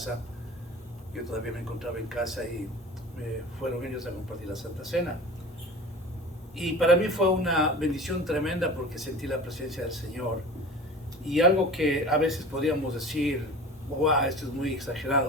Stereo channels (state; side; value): normal; both; correlation 0.37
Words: yo todavía me encontraba en casa y fueron ellos a compartir la Santa Cena. Y para mí fue una bendición tremenda porque sentí la presencia del Señor. Y algo que a veces podríamos decir, wow, esto es muy